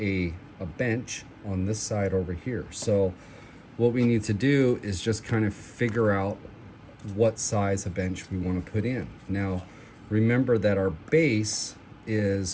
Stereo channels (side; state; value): both; identical; correlation 1.00